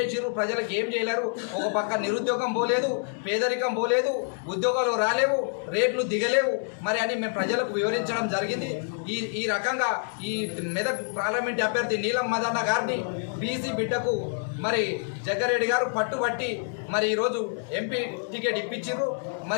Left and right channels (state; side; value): silent; right; 57 dB below the other